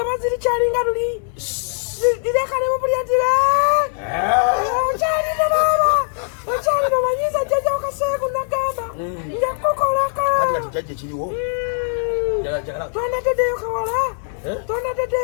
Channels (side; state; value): right; silent; 63 dB below the other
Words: ziri kyalinga luli. Direkanemu bulyatire. Okyalina baba. Okyalina omanyiza jjajja Kaseegu nagamba. Njakukolako. Kati jajja kiriwo. Tonateddeyo kawala.